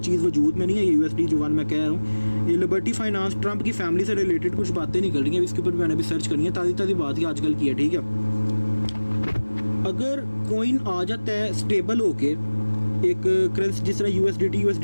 चीज़ वजूद में नहीं है, USD जो 1 मैं कह रहा हूँ। ये लिबर्टी फाइनेंस ट्रंप की फैमिली से रिलेटेड कुछ बातें निकल रही हैं, इसके ऊपर मैंने भी सर्च करनी है, ताज़ी बात ही आजकल की है, ठीक है। अगर कॉइन आ जाता है स्टेबल होके, एक करेंसी जिस तरह USDT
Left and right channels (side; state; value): both; inverted; correlation -1.00